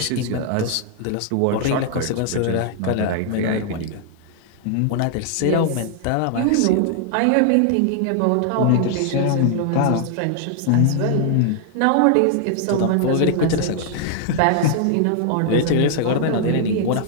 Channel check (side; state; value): both; different; correlation 0.00